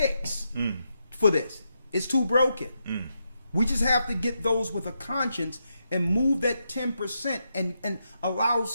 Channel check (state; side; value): inverted; both; correlation -0.83